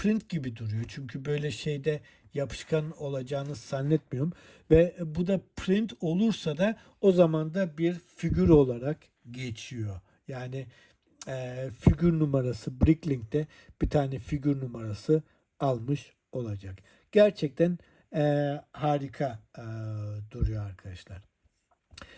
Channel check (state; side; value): identical; both; correlation 1.00